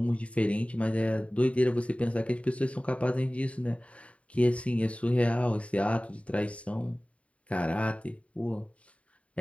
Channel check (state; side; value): late; right; 0.064 ms